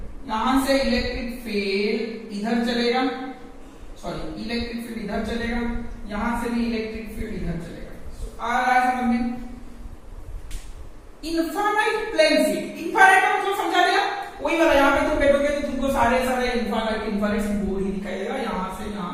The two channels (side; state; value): both; identical; correlation 1.00